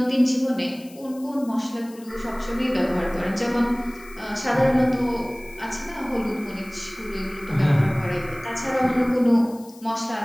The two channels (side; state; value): left; noise; hiss, 23 dB below the sound